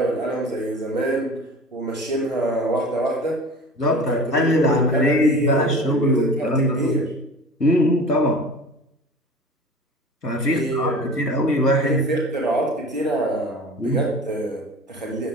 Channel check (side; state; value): both; normal; correlation 0.39